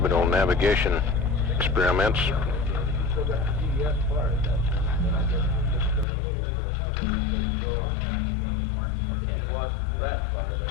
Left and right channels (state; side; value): drops out; right; at 6.1 s